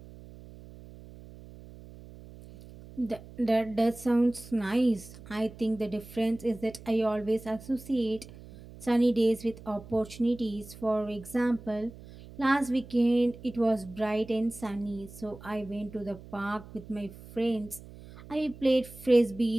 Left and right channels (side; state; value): right; noise; hum, 18 dB below the sound